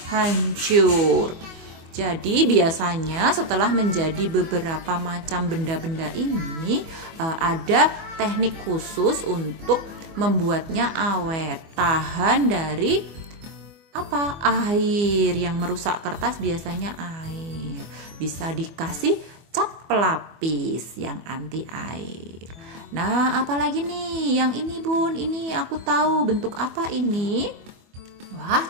hancur. Jadi biasanya setelah menjadi beberapa macam benda-benda ini, ada teknik khusus untuk membuatnya awet, tahan dari air yang merusak kertas, biasanya air. Bisa dikasih cat pelapis yang anti air. Nah, apalagi nih yang ini Bun, ini aku tahu bentuk apa ini? Wah,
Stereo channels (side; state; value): left; late; 24 ms